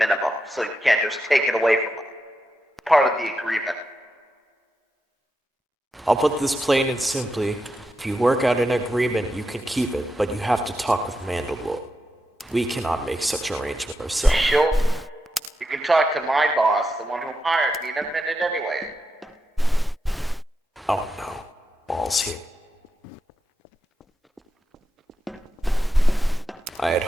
so you can't just take it away from us. Part of the agreement. I'll put this plain and simply. If you work out an agreement, you can keep it, but you have to talk with Mandalore. We cannot make such arrangement ourselves. Sure. You can talk to my boss, the one who hired me, in a minute anyway. Oh no, Maul's here. I had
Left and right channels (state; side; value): normal; both; correlation 0.86